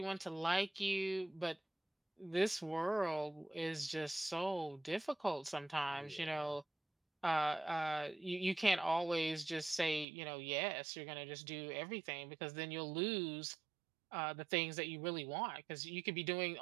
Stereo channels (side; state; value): left; drops out; at 10.1 s